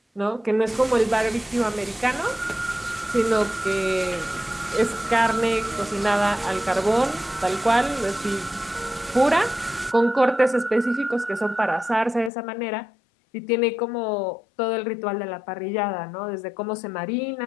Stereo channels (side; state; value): right; drops out; at 12.3 s